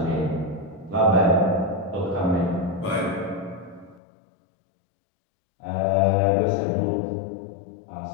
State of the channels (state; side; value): drops out; right; at 4.0 s